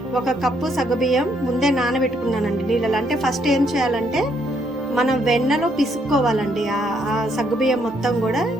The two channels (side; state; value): both; normal; correlation 0.72